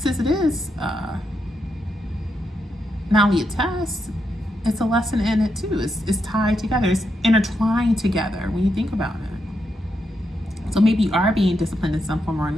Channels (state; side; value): normal; both; correlation 0.82